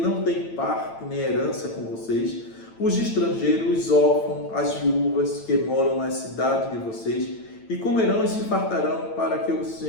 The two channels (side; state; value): right; late; 9.0 ms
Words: tem parte nem herança com vocês, os estrangeiros, os órfãos, as viúvas que moram nas cidades de vocês, e comerão e se fartarão para que o